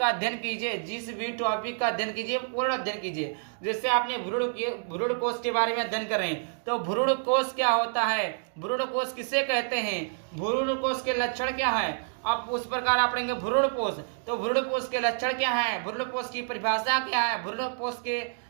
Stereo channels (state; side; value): silent; left; digital silence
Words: अध्ययन कीजिए पूर्ण अध्ययन कीजिए। जैसे आपने भ्रूणकोश के बारे में अध्ययन कर रहे हैं, तो भ्रूणकोश क्या होता है, भ्रूणकोश किसे कहते हैं, भ्रूणकोश के लक्षण क्या है, अब उस प्रकार आप पढ़ेंगे भ्रूणपोष, तो भ्रूणपोष के लक्षण क्या है, भ्रूणपोष की परिभाषा क्या है, भ्रूणपोष के